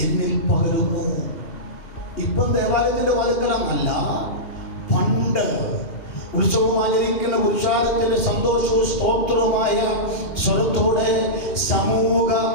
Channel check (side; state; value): right; late; 2.9 ms